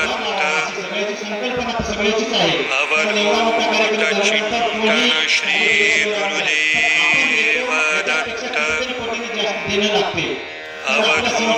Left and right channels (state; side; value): identical; both; correlation 1.00